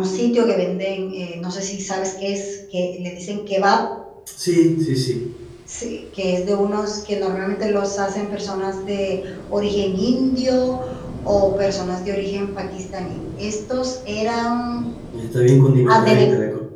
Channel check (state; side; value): identical; both; correlation 1.00